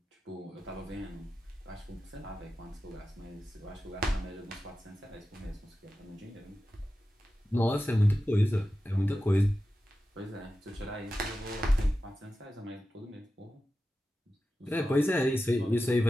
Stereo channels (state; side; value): normal; both; correlation 0.93